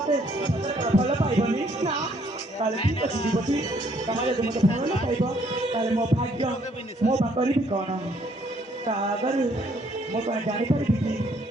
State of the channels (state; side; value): normal; both; correlation 0.66